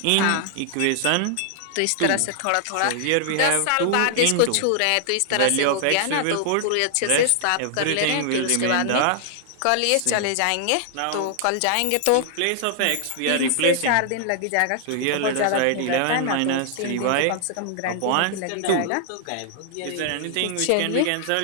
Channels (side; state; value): both; different; correlation -0.01